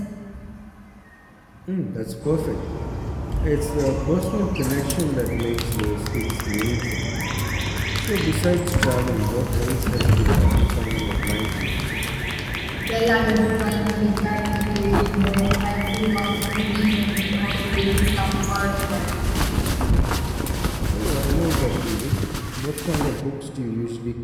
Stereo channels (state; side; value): identical; both; correlation 1.00